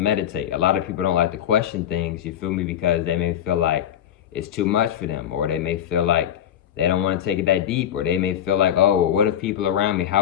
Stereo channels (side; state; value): right; quieter; 10.3 dB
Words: A lot of people don't like to question things, you feel me, because they may feel like it's too much for them, or they may feel like they don't want to take it that deep, or they may feel like, oh, what if people around me,